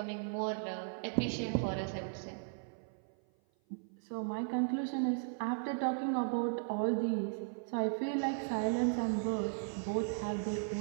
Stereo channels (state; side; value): silent; left; 53 dB below the other